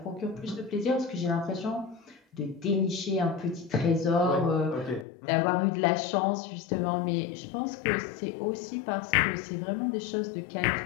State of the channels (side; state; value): right; drops out; at 5.1 s